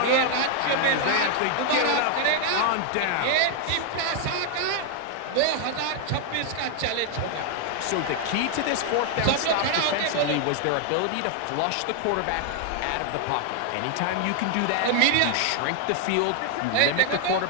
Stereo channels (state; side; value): different; both; correlation 0.00